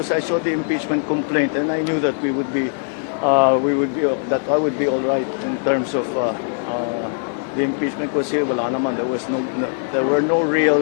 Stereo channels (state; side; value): silent; right; digital silence